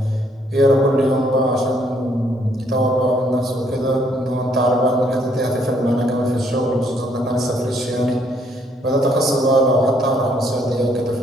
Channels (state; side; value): normal; both; correlation 0.68